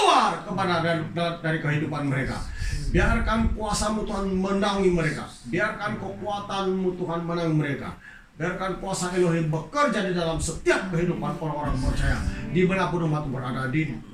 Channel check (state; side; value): identical; both; correlation 1.00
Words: kepada dari kehidupan mereka. Biarkan kuasa-Mu Tuhan menangi mereka. Biarkan kekuatan-Mu Tuhan menangi mereka. Biarkan kuasa Elohim bekerja di dalam setiap kehidupan orang-orang percaya dimanapun umat berada, di